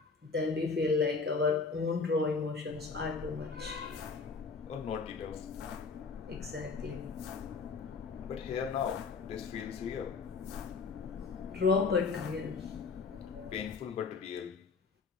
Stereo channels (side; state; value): right; quieter; 4.7 dB